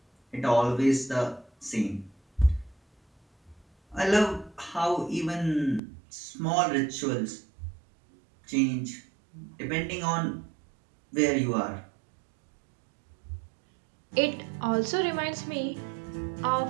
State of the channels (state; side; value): drops out; left; at 5.8 s